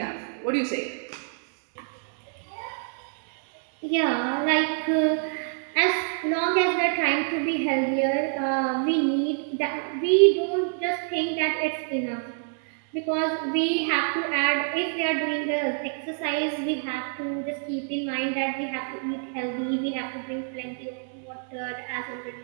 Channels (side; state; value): left; silent; 59 dB below the other